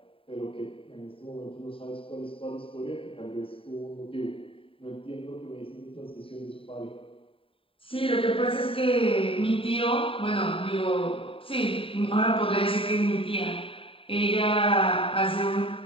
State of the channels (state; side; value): late; right; 0.26 ms